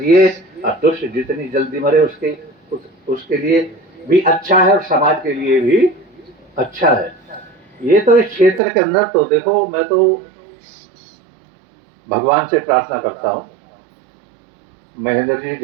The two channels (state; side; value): drops out; left; at 8.6 s